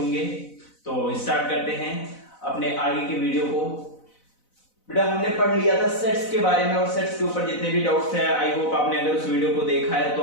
तो स्टार्ट करते हैं अपने आगे के वीडियो को। बेटा हमने पढ़ लिया था सेट्स के बारे में और सेट्स के ऊपर जितने भी डाउट्स हैं आई होप आपने अगर उस वीडियो को देखा है तो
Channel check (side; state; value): right; late; 4.0 ms